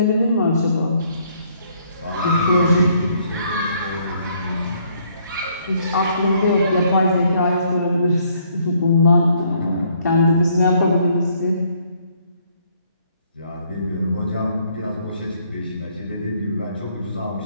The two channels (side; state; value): both; inverted; correlation -0.67